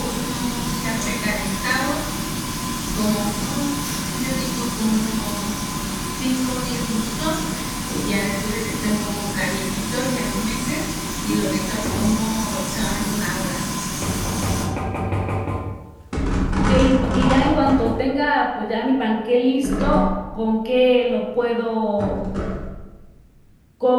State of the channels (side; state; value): both; identical; correlation 1.00